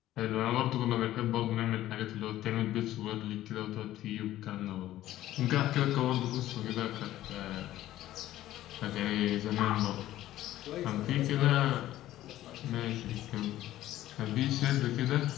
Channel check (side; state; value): right; quieter; 14.2 dB